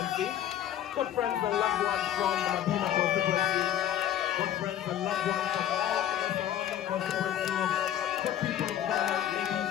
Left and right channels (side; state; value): right; quieter; 11.1 dB